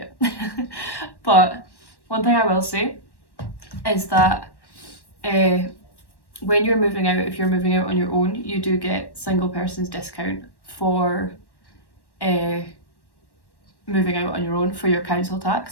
it. But one thing I will say is that when you're moving out, if you're moving out on your own, you do get single person's discount for moving out on your own for your council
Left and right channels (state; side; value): late; right; 1.1 ms